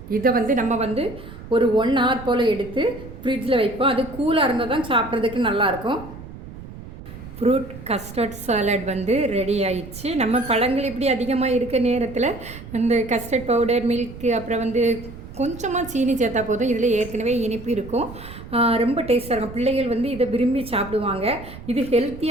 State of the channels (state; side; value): noise; right; rumble, 14 dB below the sound